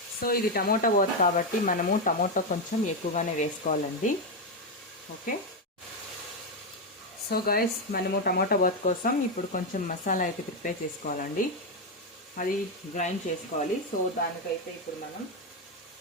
సో ఇది టమోటా బాత్ కాబట్టి మనము టమోటా కొంచెం ఎక్కువగానే వేసుకోవాలండి. ఓకే, సో గైస్ మనము టమోటా బాత్ కోసం ఇప్పుడు కొంచెం మసాలా అయితే ప్రిపేర్ చేసుకోవాలండి. అది గ్రైండ్ చేసుకోవాలి. సో దానికైతే ఇప్పుడు మనం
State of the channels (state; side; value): normal; both; correlation 0.06